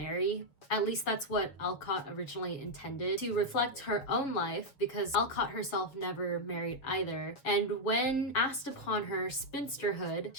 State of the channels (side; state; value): right; late; 7.2 ms